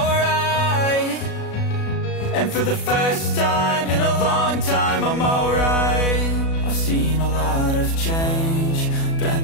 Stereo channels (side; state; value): right; late; 37 ms